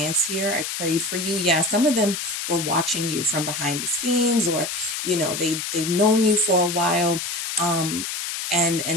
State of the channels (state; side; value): noise; left; hiss, 4 dB below the sound